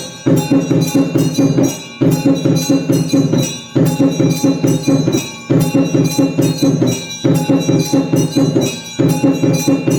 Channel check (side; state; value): both; identical; correlation 1.00